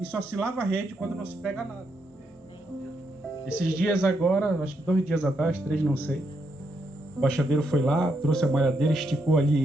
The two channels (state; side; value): normal; both; correlation 0.79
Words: E só se lava a rede quando não se pega nada. Esses dias agora, acho que 2 dias atrás, 3, não sei. O baixadeiro foi lá, trouxe a malhadeira, esticou